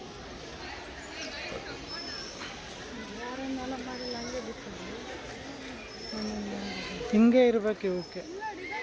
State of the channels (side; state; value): both; identical; correlation 1.00